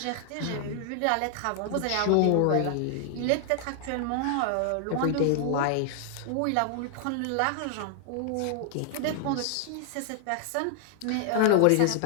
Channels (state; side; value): different; both; correlation 0.00